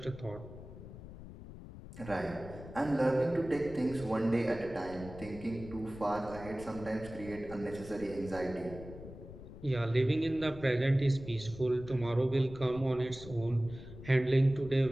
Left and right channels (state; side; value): noise; left; rumble, 14 dB below the sound